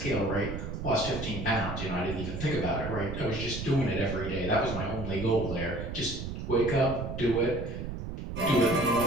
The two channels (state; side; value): noise; right; rumble, 6 dB below the sound